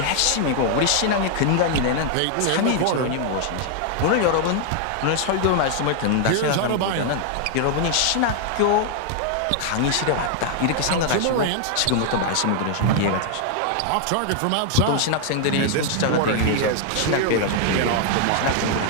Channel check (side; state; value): both; different; correlation 0.00